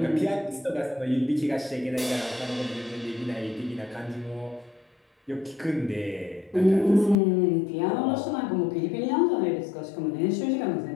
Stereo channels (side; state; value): right; drops out; at 7.2 s